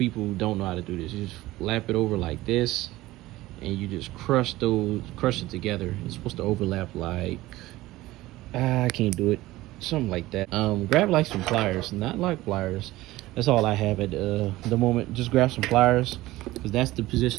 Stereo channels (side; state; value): left; quieter; 17.6 dB